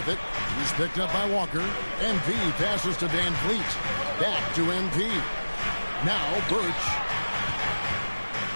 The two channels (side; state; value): both; inverted; correlation -1.00